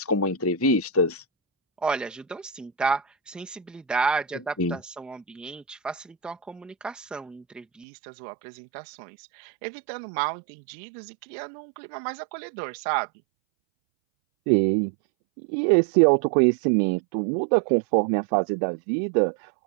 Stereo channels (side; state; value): left; drops out; at 7.9 s